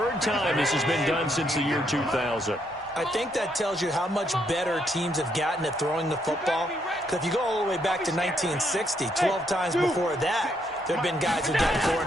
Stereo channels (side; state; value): both; normal; correlation 0.75